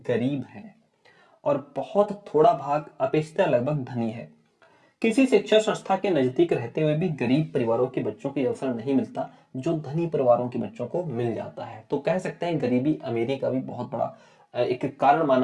है और बहुत थोड़ा भाग अपेक्षित लगभग धनी है। किसी शिक्षा संस्था के नजदीक रहते हुए भी गरीब परिवारों के बच्चों को अवसर नहीं मिलता जो धनी परिवारों के बच्चों को मिल जाता है। तो कह सकते हैं गरीबी अमीरी का भी बहुत बड़ा एक कारण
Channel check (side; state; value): both; identical; correlation 1.00